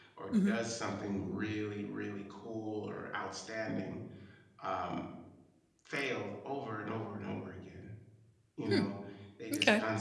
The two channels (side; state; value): both; identical; correlation 1.00